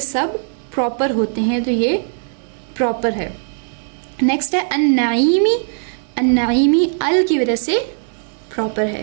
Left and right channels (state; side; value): silent; left; digital silence